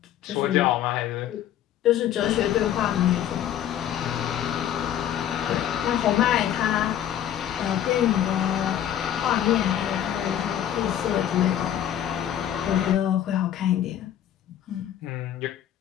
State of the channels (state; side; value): quieter; right; 10.8 dB